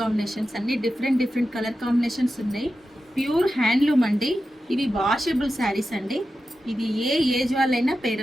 కాంబినేషన్స్ అన్ని డిఫరెంట్ కలర్ కాంబినేషన్స్ ఉన్నాయి. ప్యూర్ హ్యాండ్లూమ్ అండి. ఇవి వాషబుల్ శారీస్ అండి. ఇది ఏ ఏజ్ వాళ్ళైనా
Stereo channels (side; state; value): both; normal; correlation 0.91